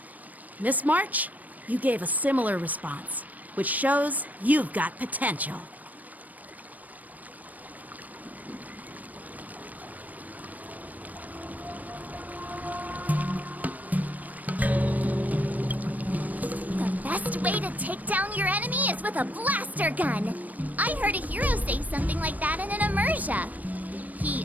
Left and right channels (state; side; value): late; left; 0.078 ms